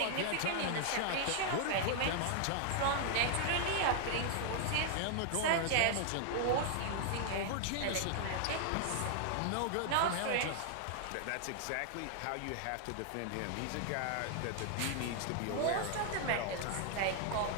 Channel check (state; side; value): different; both; correlation 0.00